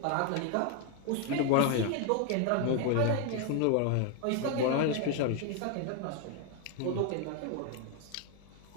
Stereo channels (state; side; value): different; both; correlation 0.01